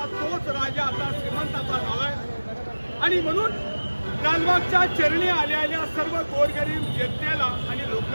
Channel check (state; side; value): inverted; both; correlation -1.00